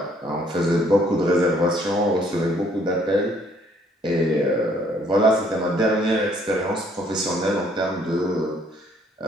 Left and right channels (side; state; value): both; normal; correlation 0.64